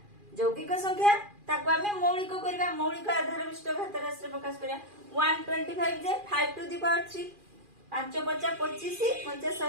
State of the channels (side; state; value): left; late; 2.4 ms